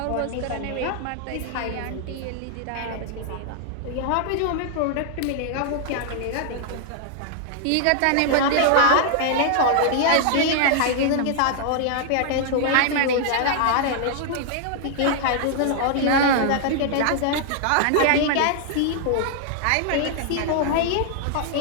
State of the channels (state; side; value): different; both; correlation -0.01